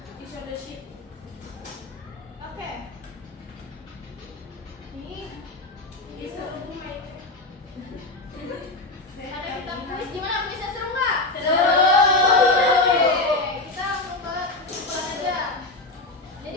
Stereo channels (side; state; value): right; quieter; 3.0 dB